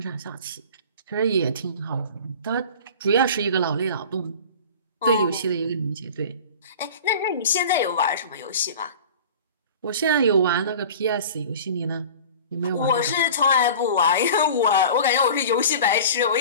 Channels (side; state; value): both; inverted; correlation -0.39